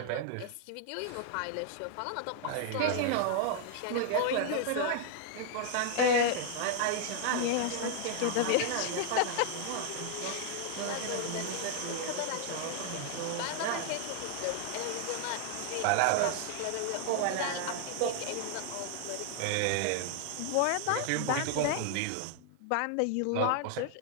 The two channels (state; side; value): different; both; correlation 0.00